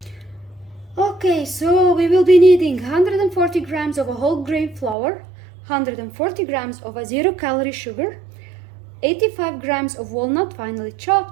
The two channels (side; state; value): left; drops out; at 5.0 s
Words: Okay, so we will be needing 140 grams of a whole grain flour, 140 grams of a 0-calorie sugar, 85 grams of walnut finely